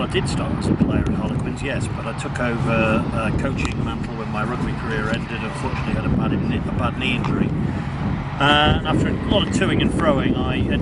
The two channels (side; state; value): both; identical; correlation 1.00